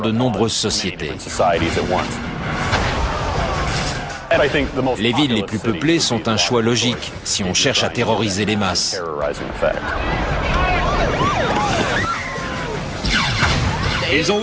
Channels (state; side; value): identical; both; correlation 1.00